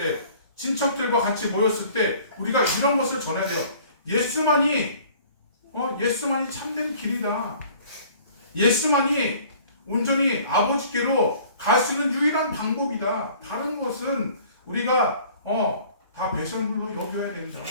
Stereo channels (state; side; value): inverted; both; correlation -0.52